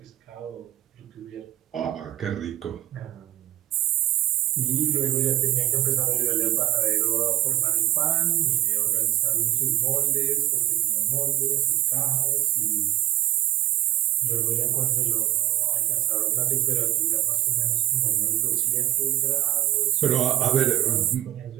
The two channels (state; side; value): quieter; left; 14.4 dB